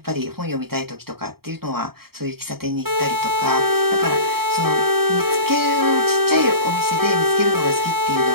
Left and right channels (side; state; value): left; late; 0.95 ms